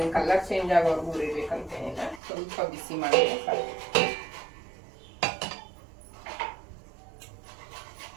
ಕಲರ್ ಚೇಂಜ್ ಆಗೋರ್ಗು ಹುರಿಬೇಕಂತೇನಿಲ್ಲ, ಸ್ವಲ್ಪ ಬಿಸಿ ಮಾಡಿದ್ರೆ ಸಾಕು.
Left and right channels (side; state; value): left; drops out; at 2.2 s